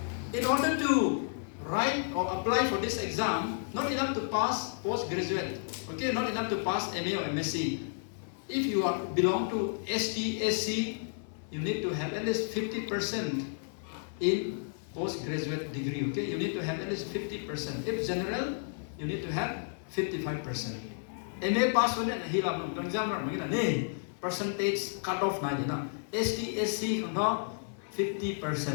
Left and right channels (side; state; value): right; silent; 57 dB below the other